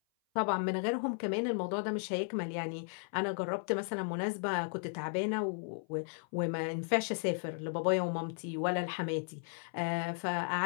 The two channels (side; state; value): right; silent; 54 dB below the other